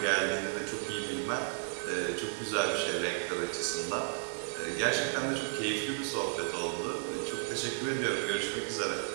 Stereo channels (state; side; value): silent; left; digital silence